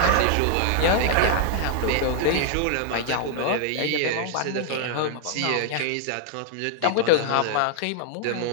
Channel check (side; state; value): both; different; correlation 0.00